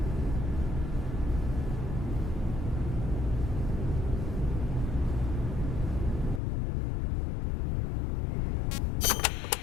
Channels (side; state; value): right; drops out; at 6.4 s